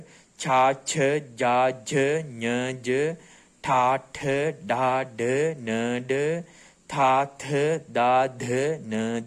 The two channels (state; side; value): identical; both; correlation 1.00